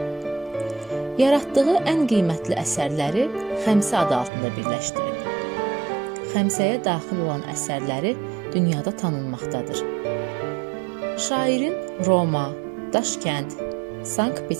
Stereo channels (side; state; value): left; drops out; at 4.3 s